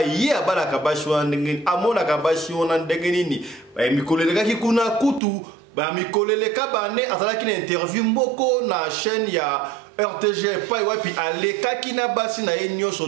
ye abalaka basi wana ndenge amona ka basi wana ndenge nini mikolelekaki kuna kutu ba mikoleleka bane azalaki na interview mboko na chaîne ya RTG pa wapi alekaki na basi na ye nyonso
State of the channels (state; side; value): drops out; left; at 5.2 s